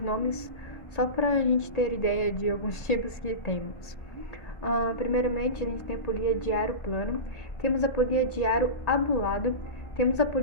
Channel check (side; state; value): right; late; 1.8 ms